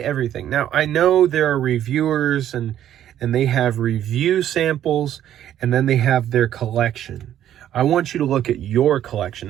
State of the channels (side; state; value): left; quieter; 11.2 dB